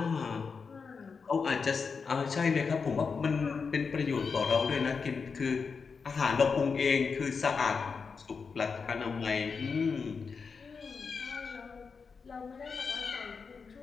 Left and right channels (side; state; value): right; quieter; 5.3 dB